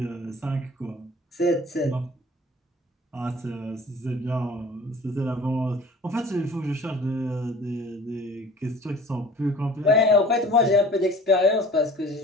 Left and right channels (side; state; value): both; normal; correlation 0.46